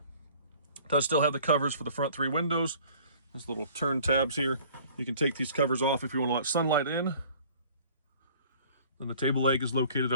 does still have the covers for the front three windows. Those little turn tabs here. You can take these covers off if you want to let sunlight in. Then the table leg is located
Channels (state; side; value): inverted; both; correlation -0.51